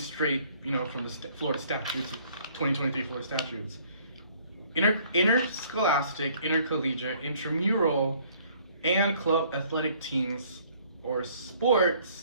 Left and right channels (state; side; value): inverted; both; correlation -0.59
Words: from the Florida statutes, 2023 Florida statutes, interscholastic, intercollegiate, intramural, and club athletic teams or